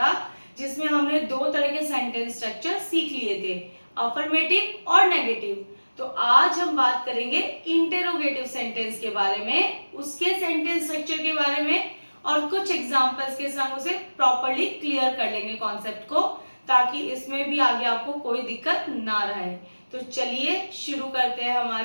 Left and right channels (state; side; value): inverted; both; correlation -1.00